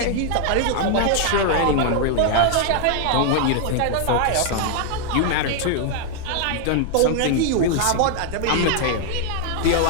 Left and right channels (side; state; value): both; different; correlation 0.00